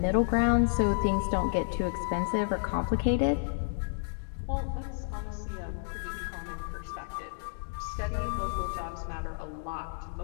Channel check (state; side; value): silent; right; digital silence